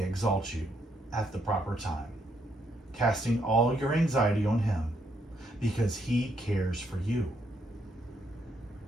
exalt you at the proper time, casting all your anxiety on him, because he cares for you.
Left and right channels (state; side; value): normal; both; correlation 0.75